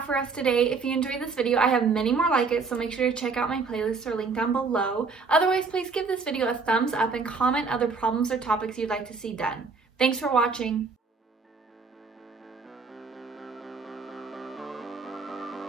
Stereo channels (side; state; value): left; quieter; 4.6 dB